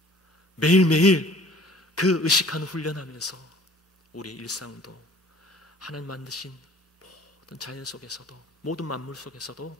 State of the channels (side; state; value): both; normal; correlation 0.50